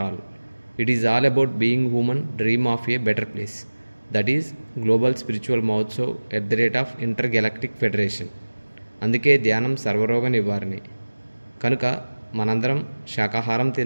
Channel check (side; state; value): both; inverted; correlation -1.00